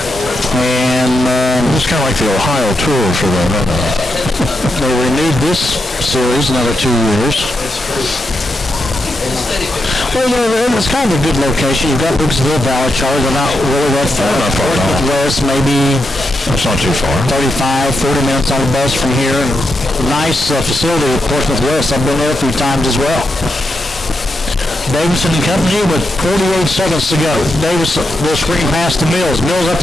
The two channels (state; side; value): normal; both; correlation 0.85